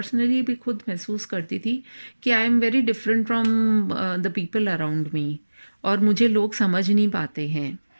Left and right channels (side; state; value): both; inverted; correlation -1.00